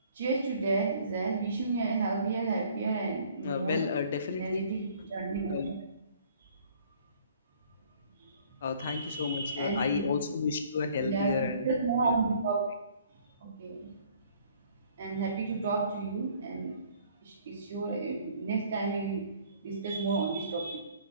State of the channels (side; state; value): both; inverted; correlation -0.57